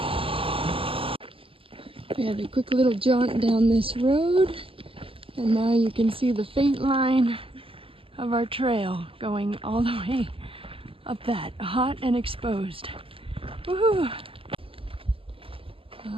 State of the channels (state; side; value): late; left; 0.26 ms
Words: We had a quick little jaunt down this road, and now you can see the faint line of our trail going all the way up that, hot and exposed. Woohoo!